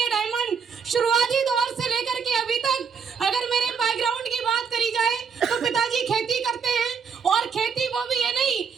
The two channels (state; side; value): quieter; left; 6.4 dB